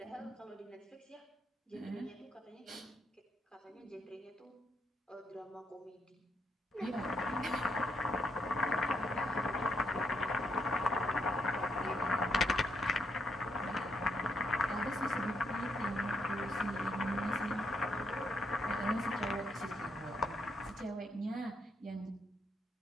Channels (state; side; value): normal; both; correlation 0.78